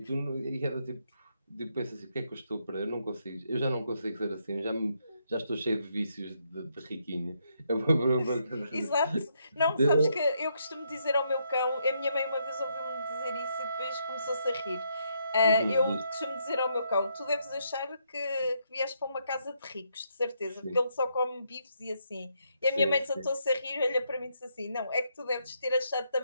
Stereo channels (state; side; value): inverted; both; correlation -0.76